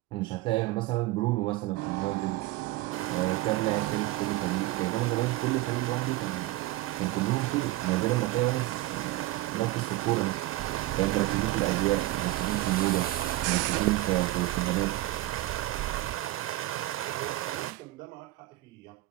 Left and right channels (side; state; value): left; quieter; 17.4 dB